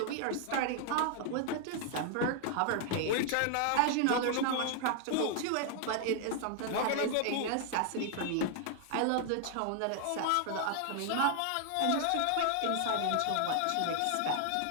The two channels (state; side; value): different; both; correlation 0.00